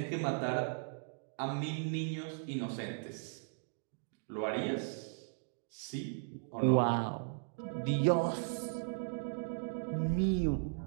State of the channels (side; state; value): left; silent; digital silence